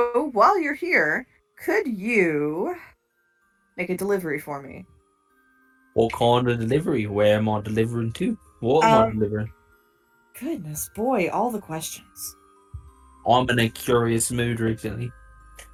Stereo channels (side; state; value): both; identical; correlation 1.00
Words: while you're here, could you make a delivery for me? What kind of delivery? Where am I delivering to? What am I delivering? Goodness, boy, all the questions. I'm in a curious mood recently.